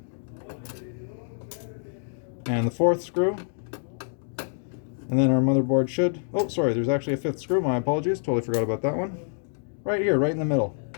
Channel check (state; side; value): silent; right; digital silence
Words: and the 4th screw, and then our motherboard should, oh sorry, there's actually a 5th screw, my apologies, totally forgot about that one. Right here, right in the middle.